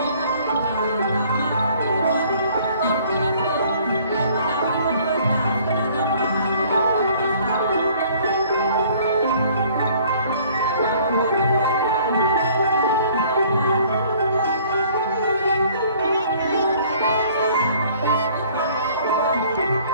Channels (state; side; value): inverted; both; correlation -0.56